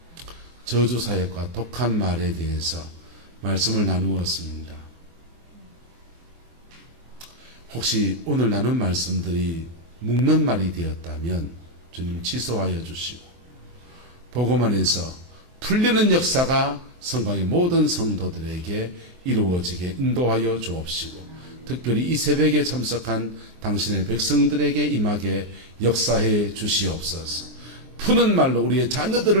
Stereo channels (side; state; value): left; late; 24 ms